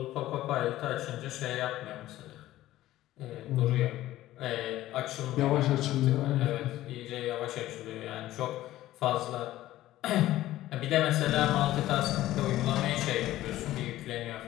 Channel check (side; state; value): right; quieter; 15.0 dB